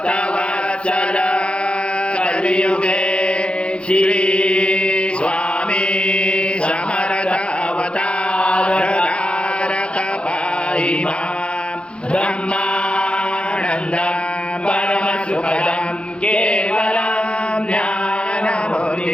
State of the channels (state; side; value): late; right; 0.058 ms